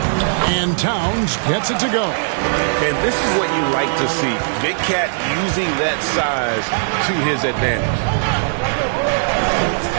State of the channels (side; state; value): left; silent; digital silence